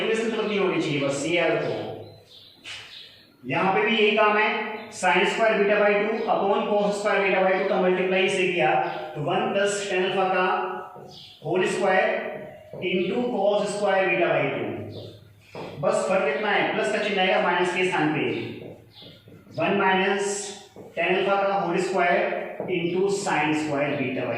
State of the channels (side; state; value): both; identical; correlation 1.00